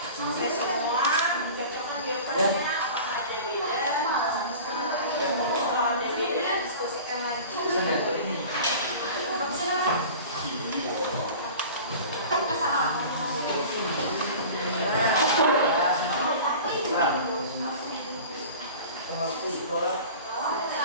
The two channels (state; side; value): inverted; both; correlation -0.39